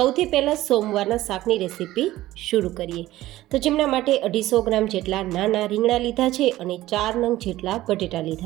પહેલાં સોમવારના શાકની રેસીપી શરૂ કરીએ. તો જેમના માટે 250 ગ્રામ જેટલા નાના રીંગણા લીધા છે અને 4 નંગ જેટલા બટેટા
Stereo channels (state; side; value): quieter; left; 15.8 dB